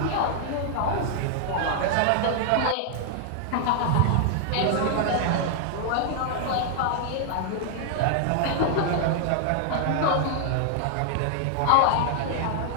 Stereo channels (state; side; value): different; both; correlation -0.01